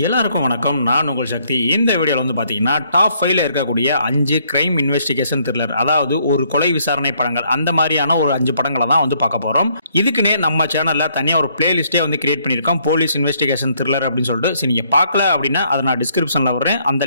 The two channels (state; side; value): inverted; both; correlation -0.68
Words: எல்லாருக்கும் வணக்கம். நான் உங்கள் சக்தி. இந்த வீடியோவில் வந்து பார்த்தீங்கன்னா டாப் 5ல இருக்கக்கூடிய 5 கிரைம் இன்வெஸ்டிகேஷன் த்ரில்லர், அதாவது ஒரு கொலை விசாரணை படங்கள், அந்த மாதிரியான ஒரு 5 படங்களை தான் வந்து பார்க்க போகிறோம். இதுக்குன்னே நம்ம சேனலில் தனியாக ஒரு பிளேலிஸ்ட்டே வந்து கிரியேட் பண்ணியிருக்கோம், போலீஸ் இன்வெஸ்டிகேஷன் த்ரில்லர் அப்படின்னு சொல்லிட்டு. சரி, நீங்கள் பார்க்கல அப்படின்னா அதை நான் டிஸ்கிரிப்ஷனில் வர்றேன், அந்த